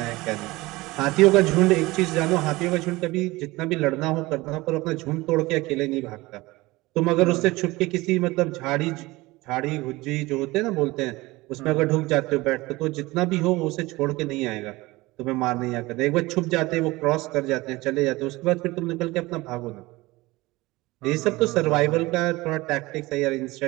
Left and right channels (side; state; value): left; quieter; 20.8 dB